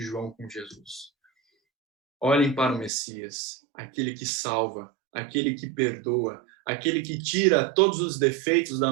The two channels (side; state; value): left; drops out; at 2.9 s